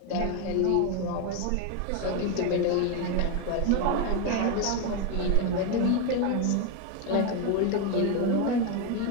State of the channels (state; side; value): different; both; correlation 0.02